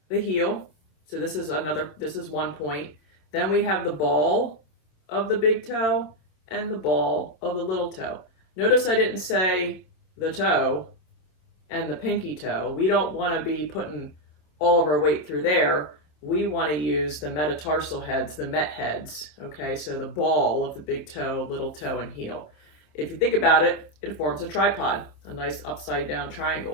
the heel. So this is one point. Then we have the ball of the big toe and the ball of the little toe. Notice I didn't say the toe and the pinky toe. We don't want to be putting all of our weight through there. We want to use the metatarsal heads, the met heads, okay? So the ball of the big toe, little toe, and heel. If you think about it, it forms a tripod, a nice upside down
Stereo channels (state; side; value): late; right; 27 ms